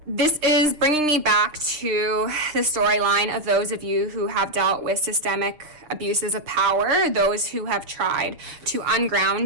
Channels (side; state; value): left; late; 6.8 ms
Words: This is bringing me back to the storyline of those of you who have dealt with systemic abuses of power, those who have tried to